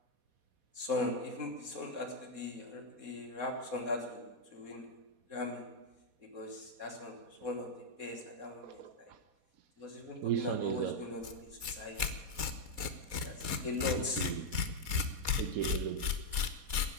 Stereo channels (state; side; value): late; left; 4.2 ms